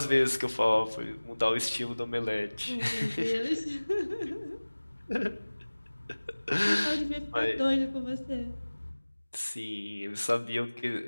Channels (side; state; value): both; inverted; correlation -1.00